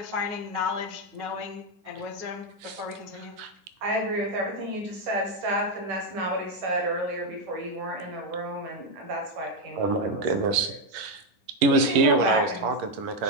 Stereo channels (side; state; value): left; late; 11 ms